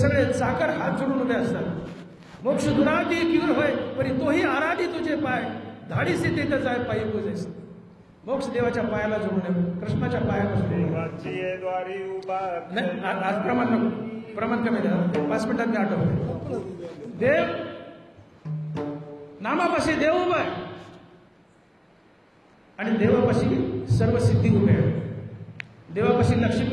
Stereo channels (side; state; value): both; identical; correlation 1.00